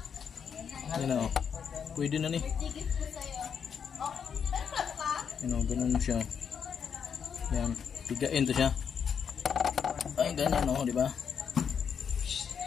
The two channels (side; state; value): right; quieter; 7.2 dB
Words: Yan o. Pwede na ni. Yan o. Ganun siya. Yan. Pigain to siya. Ay ganyan o. Diba?